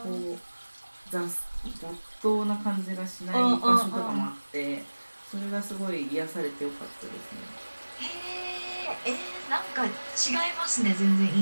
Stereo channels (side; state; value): both; inverted; correlation -1.00